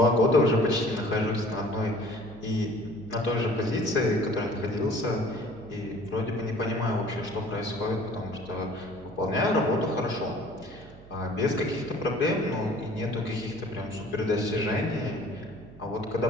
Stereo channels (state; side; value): noise; right; hum, 21 dB below the sound